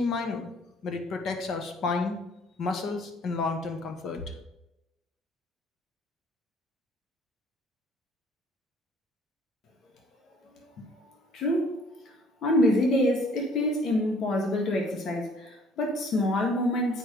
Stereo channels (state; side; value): normal; both; correlation 0.57